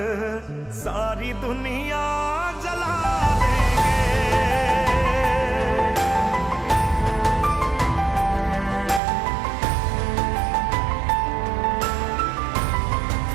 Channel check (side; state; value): left; drops out; at 9.0 s